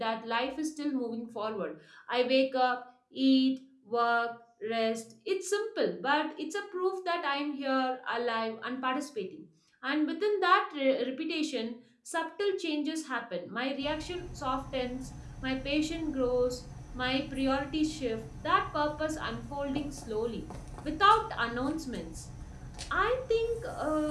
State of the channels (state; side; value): identical; both; correlation 1.00